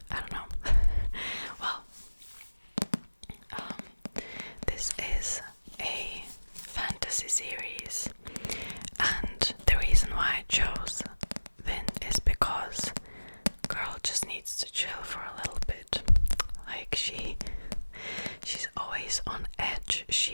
I don't know. Well, this is a fantasy series, and the reason why I chose Vin is because girl just needs to chill for a little bit. Like she's always on edge.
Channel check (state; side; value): inverted; both; correlation -1.00